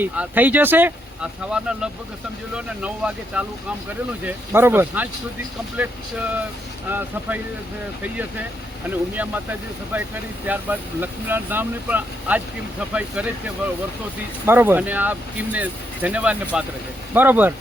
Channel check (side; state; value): both; normal; correlation 0.77